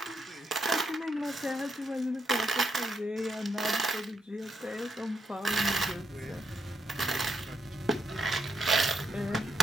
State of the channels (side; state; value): both; normal; correlation 0.77